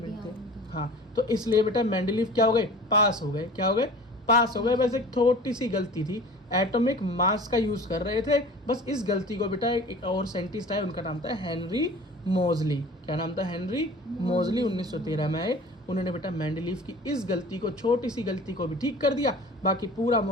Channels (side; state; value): both; normal; correlation 0.42